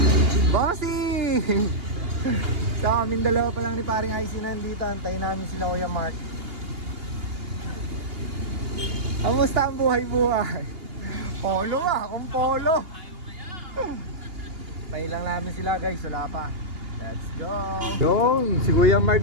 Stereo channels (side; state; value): left; late; 2.8 ms